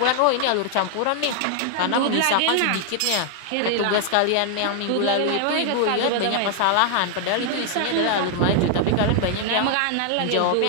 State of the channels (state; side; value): different; both; correlation 0.00